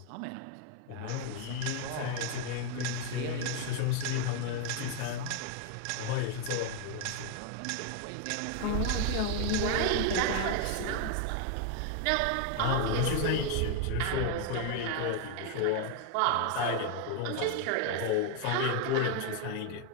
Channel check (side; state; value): both; different; correlation 0.01